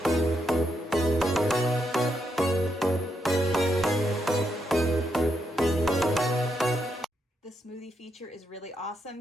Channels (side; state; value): both; normal; correlation 0.80